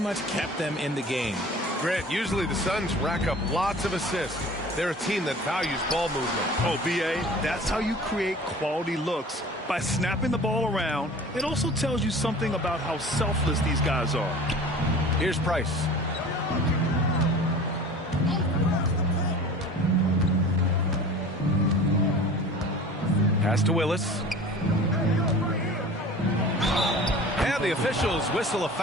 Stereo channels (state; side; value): normal; both; correlation 0.41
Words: kept them in the game. Grant, usually the Suns rack up lots of assists. They're a team that values ball movement. Oh, BA, that's how you create quality looks. By snapping the ball around, it also tells you something about how selfless these guys are. Here's Price. Pass to Willis. And the officials whistle a